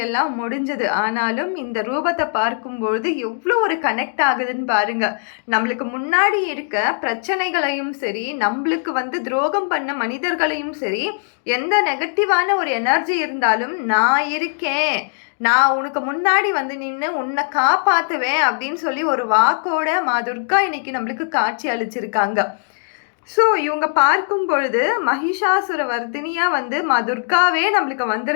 எல்லாம் முடிஞ்சது. ஆனாலும் இந்த ரூபத்தை பார்க்கும்பொழுது எவ்வளோ ஒரு கனெக்ட் ஆகுதுன்னு பாருங்க. நம்மளுக்கு முன்னாடி இருக்க பிரச்சனைகளையும் சரி, நம்மளுக்கு துரோகம் பண்ண மனிதர்களையும் சரி, எந்த நெகட்டிவான ஒரு எனர்ஜி இருந்தாலும் நான் இருக்கேன், நான் உனக்கு முன்னாடி நின்று உன்னை காப்பாற்றுவேன் அப்படின்னு சொல்லி ஒரு வாக்கோட மா துர்கா இன்னைக்கு நம்மளுக்கு காட்சி அளிச்சிருக்காங்க. ஸோ இவங்க பார்க்கும் பொழுது மகிஷாசுர வர்தினியாக மா துர்காவே நம்மளுக்கு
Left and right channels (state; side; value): silent; right; digital silence